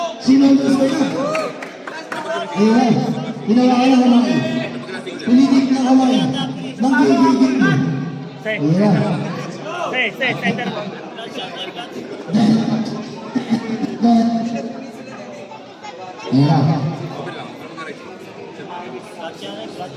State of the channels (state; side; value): identical; both; correlation 1.00